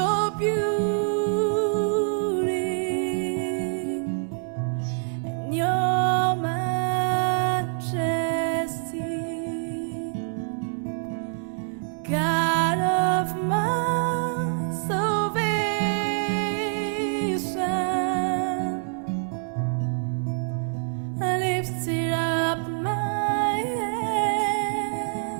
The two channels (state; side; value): silent; left; digital silence